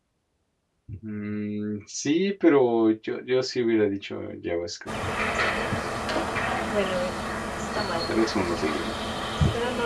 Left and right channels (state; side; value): identical; both; correlation 1.00